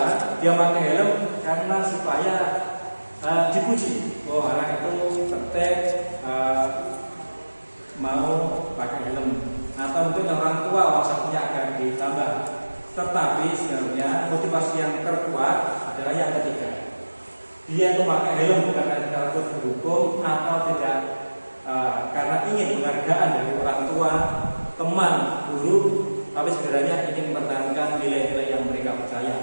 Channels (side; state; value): both; inverted; correlation -1.00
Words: dia memakai helm karena supaya dipuji. Oh, anak itu tertib, mau pakai helm. Atau mungkin orang tua maksudnya akan ditambah. Tetapi sebenarnya motivasi yang terkuat adalah yang ketiga. Dia itu pakai helm bukan karena takut dihukum, atau tidak karena ingin penghargaan dari orang tua, teman, guru, tapi sebenarnya ingin mempertahankan nilai-nilai yang mereka